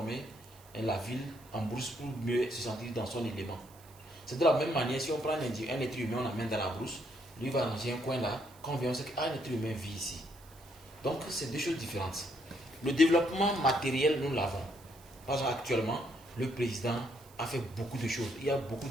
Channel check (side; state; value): right; noise; hiss, 24 dB below the sound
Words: la ville en brousse pour mieux se sentir dans son élément. C'est de la même manière, si on prend un être humain, on l'emmène dans la brousse, lui va ranger un coin là, quand on vient, on sait qu'un être humain vit ici. Donc, c'est deux choses différentes. Le développement matériel, nous l'avons. Par exemple, actuellement, le président a fait beaucoup de choses. Il y a beaucoup